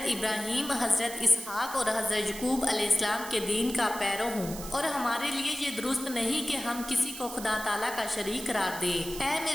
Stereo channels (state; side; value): noise; right; hiss, 10 dB below the sound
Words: ابراہیم، حضرت اسحاق اور حضرت یعقوب علیہ السلام کے دین کا پیرو ہوں، اور ہمارے لیے یہ درست نہیں کہ ہم کسی کو خدا تعالیٰ کا شریک قرار دیں۔ اے